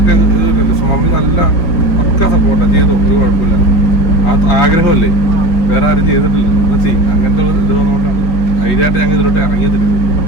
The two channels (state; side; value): late; right; 4.9 ms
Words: മമ്മി നല്ല പക്ക സപ്പോർട്ടാണ്. ചെയ്തോ ഒരു കുഴപ്പമില്ല, ആ ആഗ്രഹമല്ലേ, വേറെ ആരും ചെയ്തിട്ടില്ല ചെയ്യും. അങ്ങനത്തെ ഇത് വന്നുകൊണ്ടാണ് ധൈര്യമായിട്ട് ഞങ്ങൾ ഇതിലോട്ട് ഇറങ്ങിയത്.